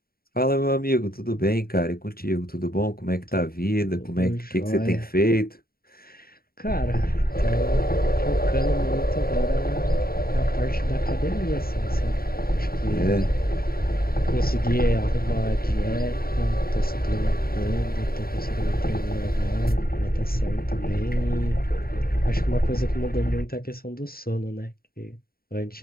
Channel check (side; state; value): right; late; 0.43 ms